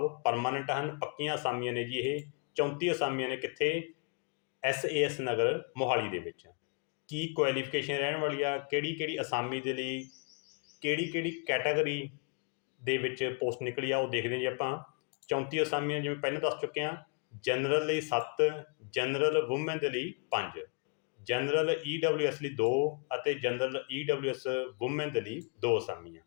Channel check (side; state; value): right; quieter; 38.1 dB